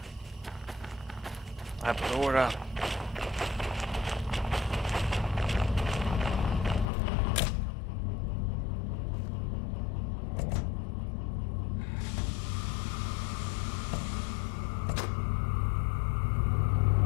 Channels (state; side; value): drops out; right; at 6.9 s